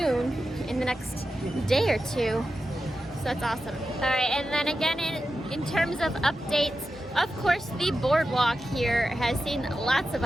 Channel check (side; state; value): both; normal; correlation 0.91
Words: in the next day or two. So that's awesome. All right, and then again, in terms of updates, of course, the Boardwalk here has seen lots of